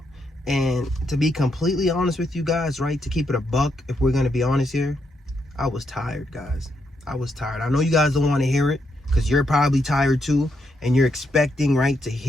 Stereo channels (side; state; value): both; normal; correlation 0.80